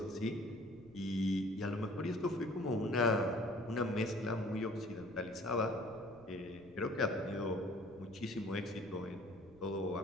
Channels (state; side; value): noise; left; rumble, 23 dB below the sound